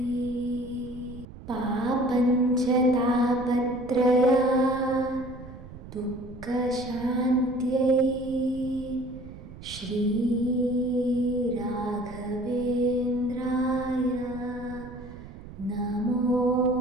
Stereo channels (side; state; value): right; noise; rumble, 15 dB below the sound